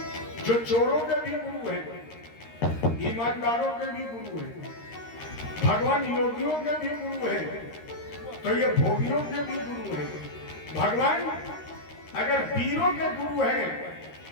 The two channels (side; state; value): right; late; 13 ms